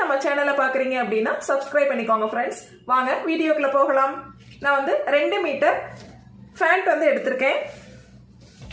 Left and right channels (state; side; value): identical; both; correlation 1.00